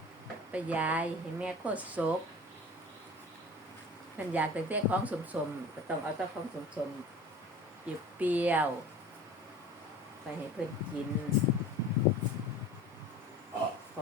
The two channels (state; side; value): normal; both; correlation 0.40